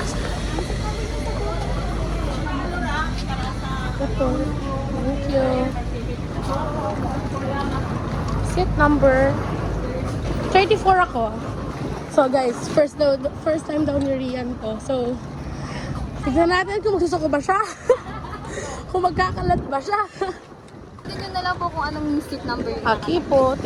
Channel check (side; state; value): both; identical; correlation 1.00